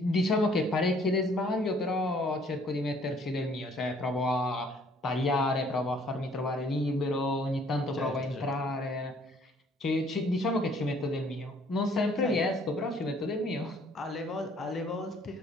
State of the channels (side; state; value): both; normal; correlation 0.60